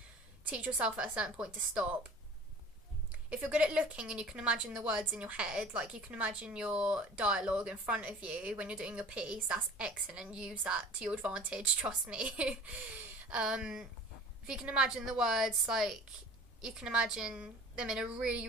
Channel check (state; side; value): normal; both; correlation 0.44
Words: Teach yourself at a certain point to stop. If you're good at looking and you can imagine the words in your head, like you can imagine your dialogue in front of you when you're doing your piece, that's excellent. Use that to your advantage, trust me. If you can imagine the words, like you can imagine them in a really,